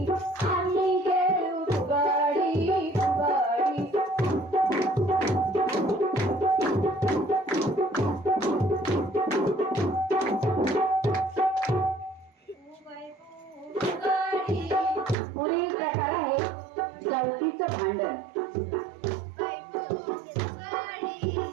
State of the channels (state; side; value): drops out; left; at 15.2 s